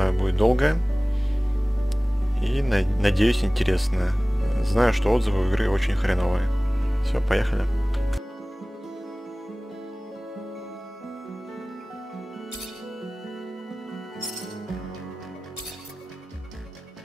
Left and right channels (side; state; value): both; normal; correlation 0.98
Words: будет долгое. И надеюсь, интересное. Знаю, что отзывы у игры очень хреновые. Все, поехали.